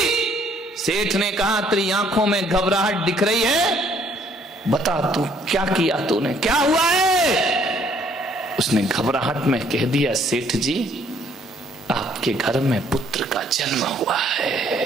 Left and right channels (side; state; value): both; normal; correlation 0.63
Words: सेठ ने कहा तेरी आंखों में घबराहट दिख रही है, बता तू क्या किया तूने, क्या हुआ है? उसने घबराहट में कह दिया, सेठ जी आपके घर में पुत्र का जन्म हुआ